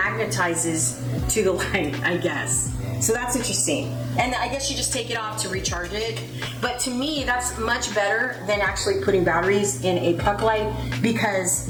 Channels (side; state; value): both; identical; correlation 1.00